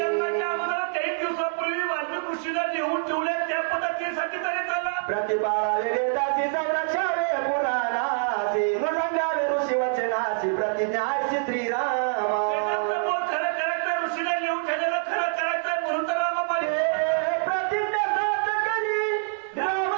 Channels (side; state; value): left; silent; 59 dB below the other